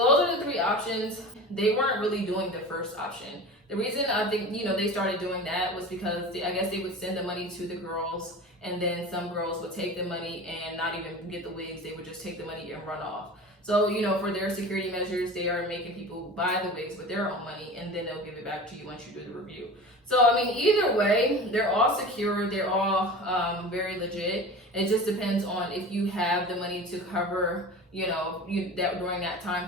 are the three options. They weren't really doing the first option. The reason I think, they started doing that was because I guess they would send the money to the girls, and then some girls would take the money and not even get the wigs. They would just take the money and run off. So, for their security measures, they are making people buy the wigs with their own money, and then they'll give it back to you once you do the review. So, either way, they're all secure. They're all very legit. It just depends on if you have the money to cover, that during that time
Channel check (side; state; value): both; normal; correlation 0.34